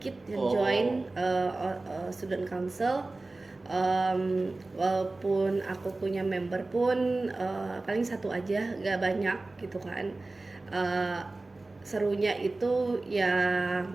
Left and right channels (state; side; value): quieter; left; 3.2 dB